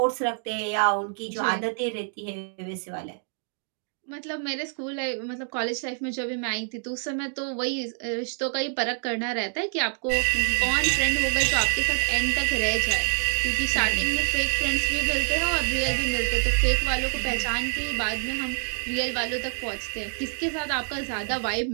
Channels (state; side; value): silent; left; 56 dB below the other